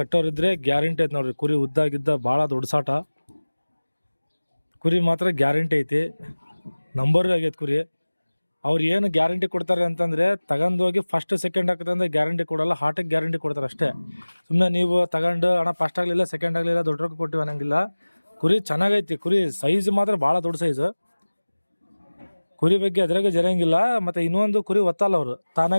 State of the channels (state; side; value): inverted; both; correlation -1.00